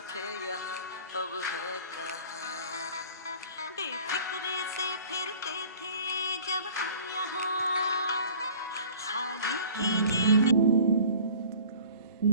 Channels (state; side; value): inverted; both; correlation -0.48